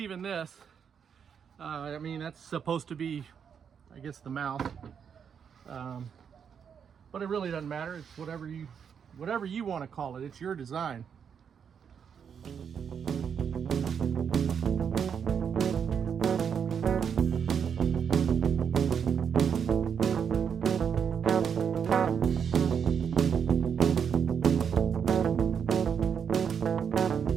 this. I mean, that's supposed to be, I guess, the mouth. But it really doesn't matter. It's whatever you want to call it. It's your design.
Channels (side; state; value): left; quieter; 7.3 dB